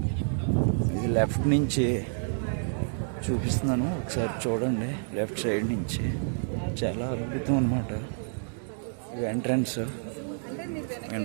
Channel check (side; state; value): left; silent; digital silence